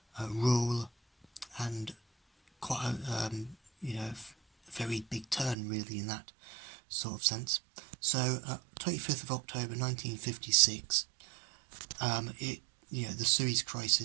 rule, and quite a very big turn really in that sort of sense. So 25th of October 1956, the Suez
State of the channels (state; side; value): drops out; left; at 5.6 s